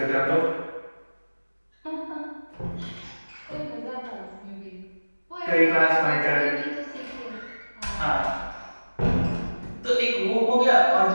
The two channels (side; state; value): both; inverted; correlation -1.00